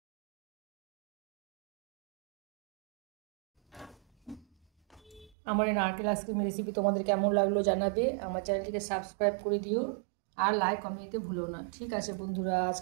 আমার এই নারকেল আইসক্রিমের রেসিপি তোমাদের কেমন লাগলো জানাবে। আমার চ্যানেলটিকে সাবস্ক্রাইব করে দিও আর লাইক কমেন্ট দিতে ভুলো না। ঠিক আছে বন্ধুরা,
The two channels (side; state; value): left; drops out; at 5.3 s